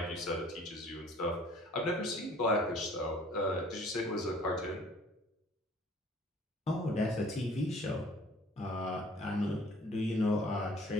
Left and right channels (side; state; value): both; normal; correlation 0.53